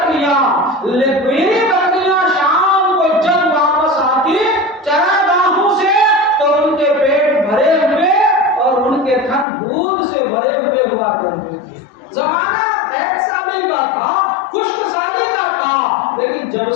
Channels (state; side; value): drops out; right; at 9.5 s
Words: شام کو جب واپس آتی چراگاہوں سے، تو ان کے پیٹ بھرے ہوئے اور ان کے تھن دودھ سے بھرے ہوئے ہوا کرتے تھے۔ زمانہ قحط سالی کا تھا، خشک سالی کا تھا، لیکن جب